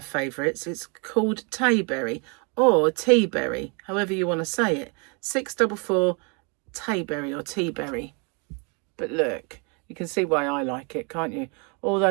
favourites. It's called Tayberry or Teaberry, however you want to say it. 644 Tayberry or Teaberry. But look, you can see why I like it, can't you? All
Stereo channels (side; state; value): left; quieter; 34.1 dB